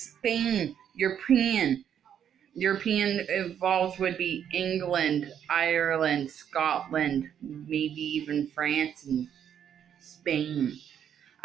Spain, European. European involves would be England, Ireland, Scotland, maybe even France and Spain,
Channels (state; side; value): quieter; left; 9.1 dB